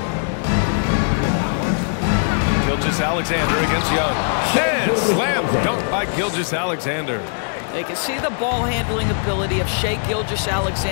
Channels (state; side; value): silent; right; digital silence